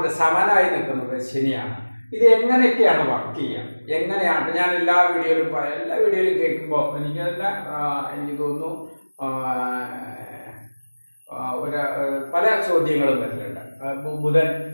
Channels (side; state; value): both; inverted; correlation -1.00